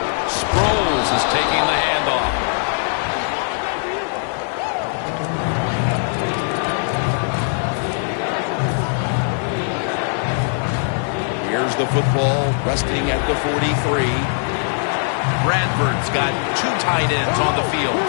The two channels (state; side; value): silent; right; 66 dB below the other